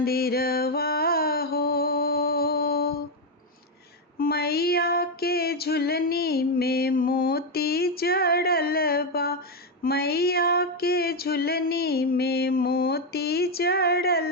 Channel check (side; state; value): both; normal; correlation 0.05